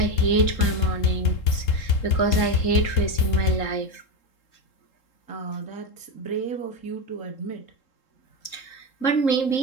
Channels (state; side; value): late; right; 3.8 ms